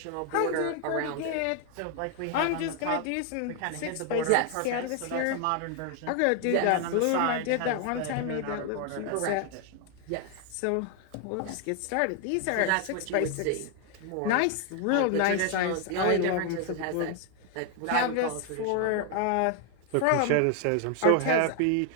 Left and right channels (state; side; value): different; both; correlation 0.00